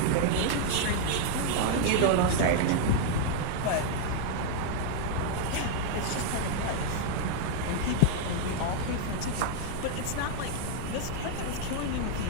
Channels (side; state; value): both; different; correlation 0.00